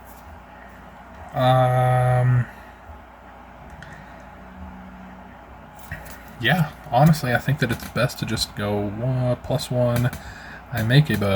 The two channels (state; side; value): identical; both; correlation 1.00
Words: Yeah, honestly, I think that it's best to just go +1. I make a